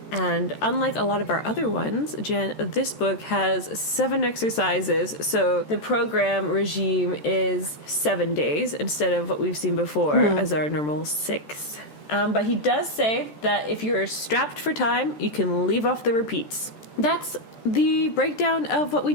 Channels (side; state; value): right; late; 14 ms